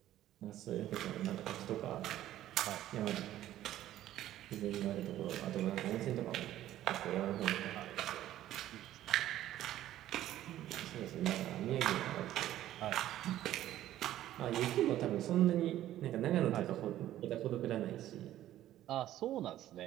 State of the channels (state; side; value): quieter; left; 13.2 dB